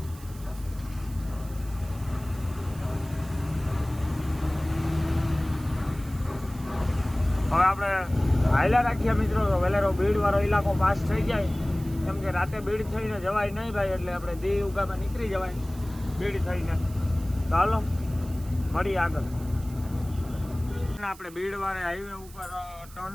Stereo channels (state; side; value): noise; right; hiss, 21 dB below the sound